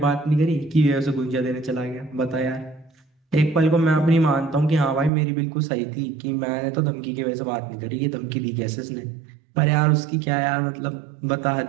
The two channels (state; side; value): drops out; left; at 5.1 s